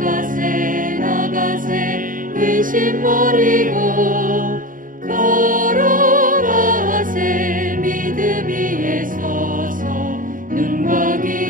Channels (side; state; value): left; late; 0.39 ms